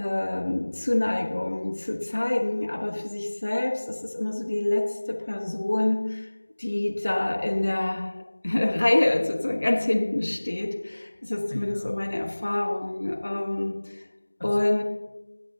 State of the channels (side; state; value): both; inverted; correlation -1.00